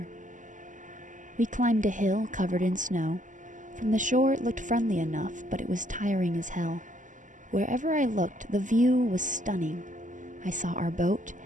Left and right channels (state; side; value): late; left; 0.37 ms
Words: We climbed a hill covered in snow. From the shore it looked friendly enough, but it was tiring as hell. Wherever I looked, the view was stunning. I saw our boat,